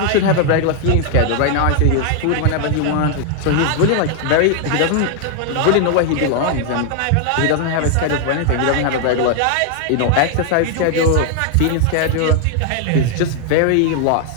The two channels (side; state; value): both; different; correlation 0.00